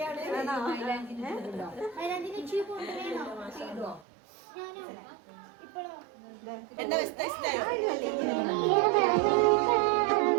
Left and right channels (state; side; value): drops out; left; at 4.0 s